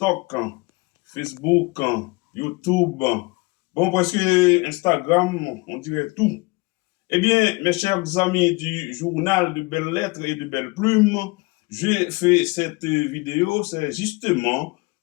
Facebook, YouTube, bon, presque Instagram, on dirait tout. Eh bien, mes chers amis du journal de Belles Lettres et de Belles Plumes, j'ai fait cette vidéo, c'est justement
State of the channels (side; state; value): right; quieter; 25.6 dB